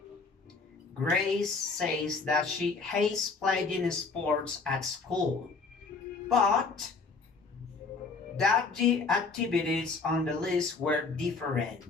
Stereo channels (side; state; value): right; quieter; 4.4 dB